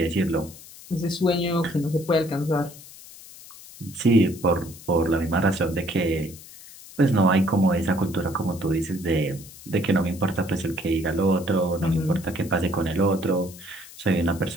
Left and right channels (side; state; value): left; noise; hiss, 18 dB below the sound